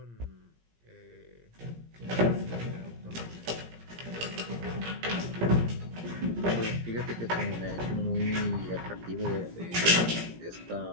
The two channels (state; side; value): late; left; 17 ms